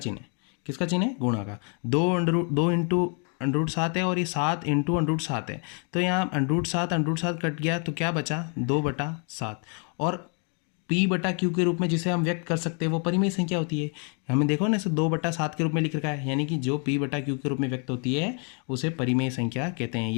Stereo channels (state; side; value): quieter; right; 39.5 dB